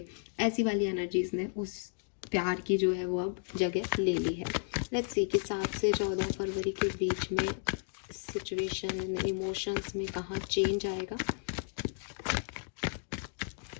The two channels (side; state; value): right; silent; digital silence